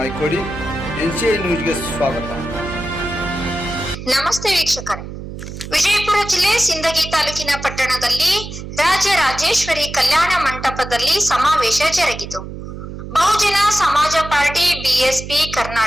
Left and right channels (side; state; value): right; noise; hum, 10 dB below the sound